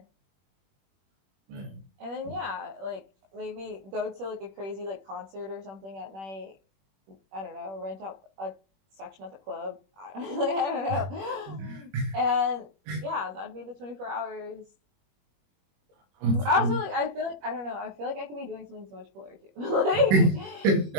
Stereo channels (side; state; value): left; late; 21 ms